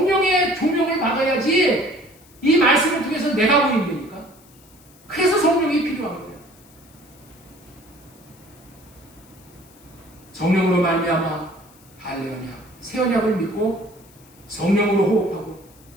조명을 받아야지 이 말씀을 통해서 내가 보인다니까. 그래서 성령이 필요한 거예요. 성령으로 말미암아 할례 언약, 새 언약을 믿고 성령으로 호흡하고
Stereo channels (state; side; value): noise; left; hiss, 27 dB below the sound